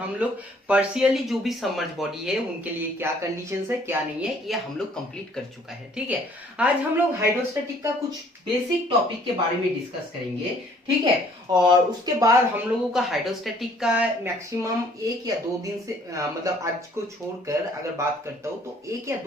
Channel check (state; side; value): normal; both; correlation 0.59